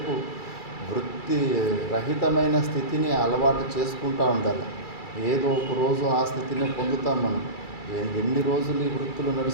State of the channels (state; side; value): late; right; 2.3 ms